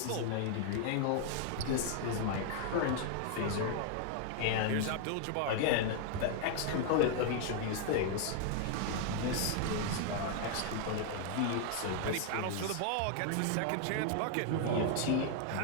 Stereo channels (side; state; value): both; different; correlation 0.00